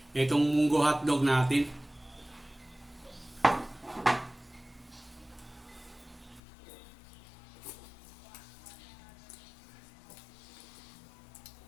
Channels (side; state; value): right; drops out; at 6.4 s